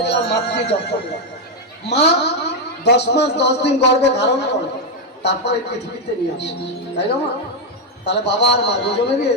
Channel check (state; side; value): normal; both; correlation 0.03